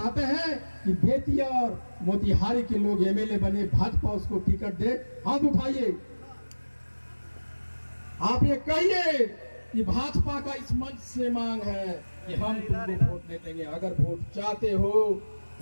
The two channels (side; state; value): both; inverted; correlation -1.00